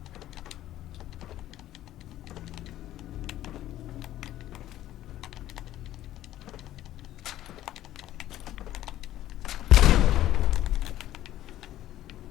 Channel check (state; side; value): quieter; right; 13.6 dB